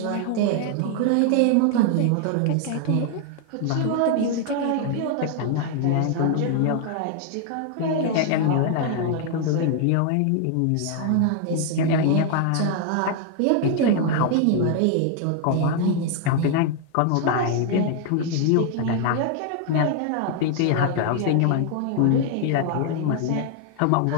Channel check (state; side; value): different; both; correlation 0.00